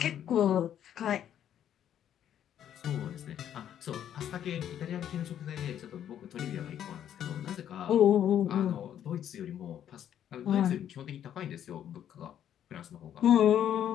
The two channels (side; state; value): right; quieter; 10.2 dB